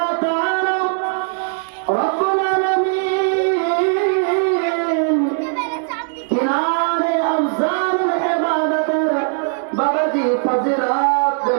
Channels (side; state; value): left; silent; 62 dB below the other